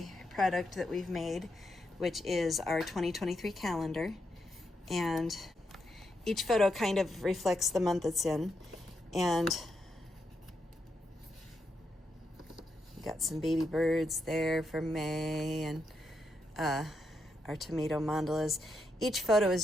product that we've made, which is our 2023 calendar. And each photo kind of reflects the month it's in. And we got some baby birds there for May, and our tomato mandalas. Each photo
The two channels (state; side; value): normal; both; correlation 0.82